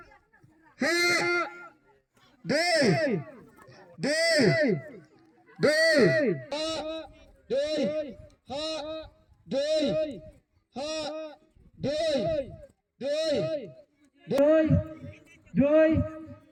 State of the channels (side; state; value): both; identical; correlation 1.00